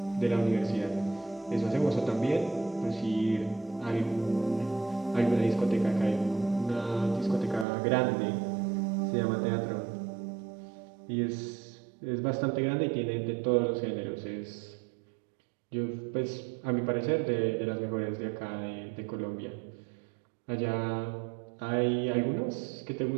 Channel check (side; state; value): left; drops out; at 7.7 s